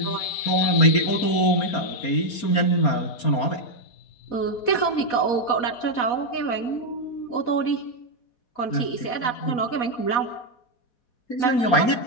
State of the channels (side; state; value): right; late; 4.3 ms